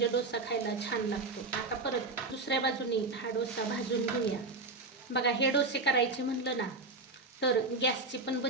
डोसा खायला छान लागतो. आता परत दुसऱ्या बाजूने हा डोसा भाजून घेऊया. बघा हे डोसे करायचे म्हणलं ना तर गॅसची पण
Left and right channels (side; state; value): left; quieter; 3.5 dB